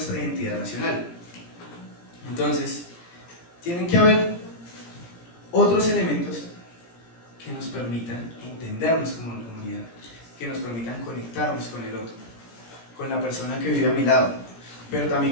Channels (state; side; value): late; right; 17 ms